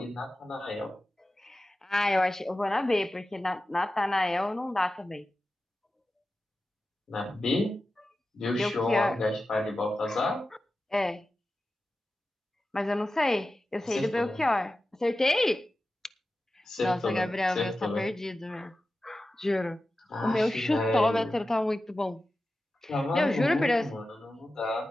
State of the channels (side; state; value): both; normal; correlation 0.93